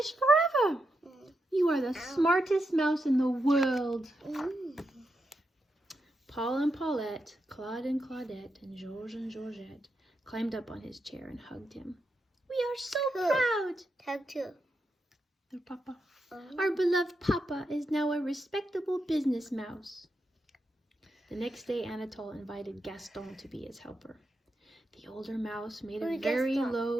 forever. You are the smartest mouse in the world. Paul and Paulette, Claude and Claudette, and Georges and Georgette climbed up on his chair and hugged him. "We are so Who? proud!" Tag 2. Their papa. Oh. "Our beloved papa is now a respectable business mouse." The next day, Anatole invited Gaston to be his helper. The older mouse made a Who's very Gaston?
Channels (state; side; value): normal; both; correlation 0.85